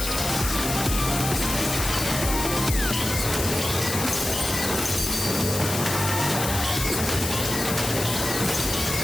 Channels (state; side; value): noise; left; hiss, 4 dB below the sound